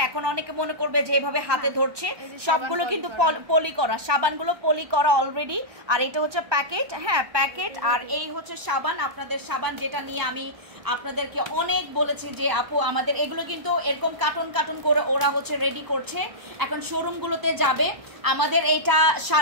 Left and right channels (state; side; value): late; left; 1.0 ms